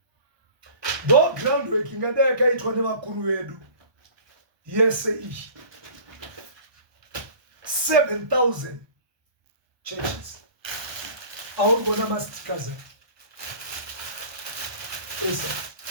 Though groundwork ingadeka itwa nevakuru vedu yese iyi 7,000 churches. Aurikuona mastikers esa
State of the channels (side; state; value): left; late; 1.2 ms